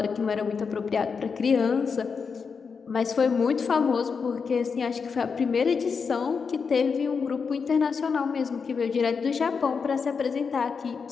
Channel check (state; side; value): quieter; right; 5.6 dB